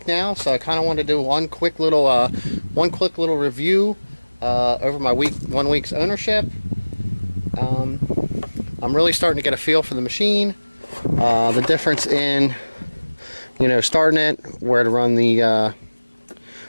now, so I kind of want to do one quick little review over my 1 week's ownership. I'm really starting to get a feel for the machine, the difference in, you know, starting it, where to run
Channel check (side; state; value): both; inverted; correlation -1.00